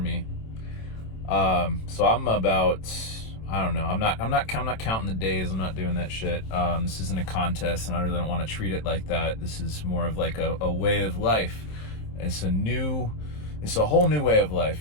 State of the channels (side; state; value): right; late; 27 ms